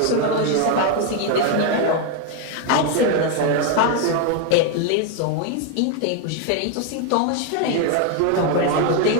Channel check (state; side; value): different; both; correlation 0.01